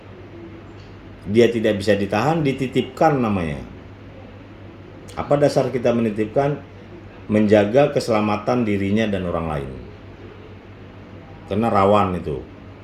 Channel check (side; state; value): both; identical; correlation 1.00